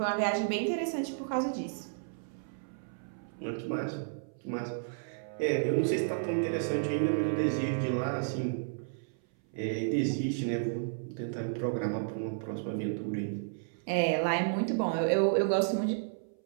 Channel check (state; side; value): silent; left; 56 dB below the other